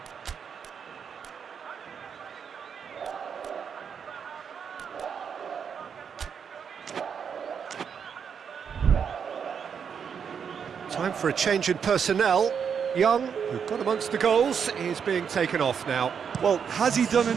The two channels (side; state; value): left; quieter; 7.1 dB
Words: Time for a change in personnel. Young, who got amongst the goals, is being taken off now. Well, has he done